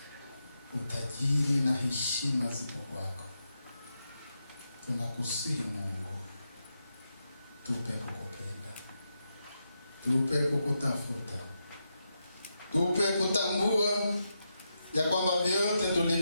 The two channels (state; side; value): inverted; both; correlation -0.85